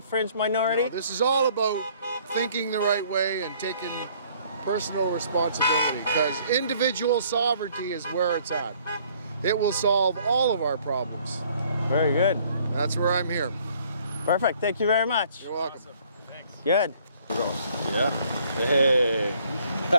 minority? No, this is all about thinking the right way and taking personal responsibility, because individual sovereignty is where it's at. It will solve all of our problems. Very good. That's where I'm here. Perfect. Thank you very much. You're welcome. Thanks. Good. Yeah. Hey.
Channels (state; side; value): inverted; both; correlation -0.60